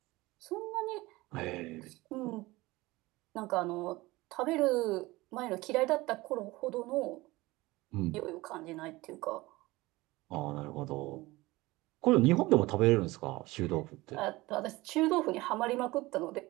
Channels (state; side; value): quieter; left; 20.3 dB